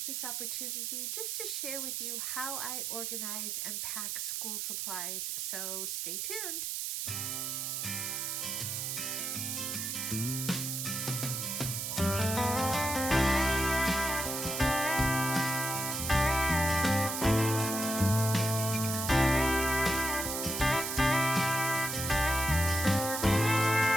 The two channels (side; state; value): right; noise; hiss, 2 dB below the sound